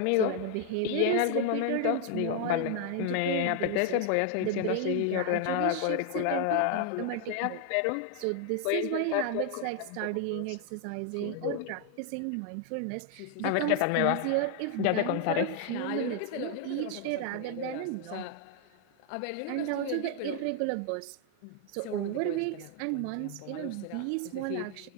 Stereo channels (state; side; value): different; both; correlation 0.00